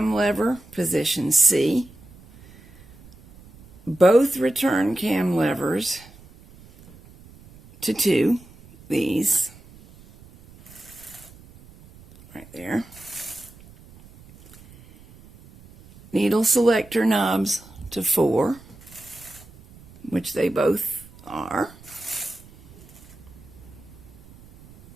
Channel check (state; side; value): noise; right; rumble, 23 dB below the sound